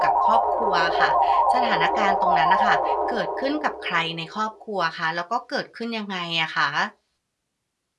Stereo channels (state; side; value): identical; both; correlation 1.00